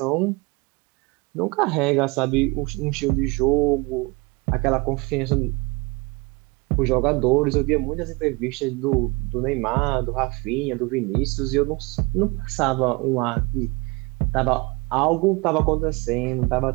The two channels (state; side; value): quieter; left; 26.3 dB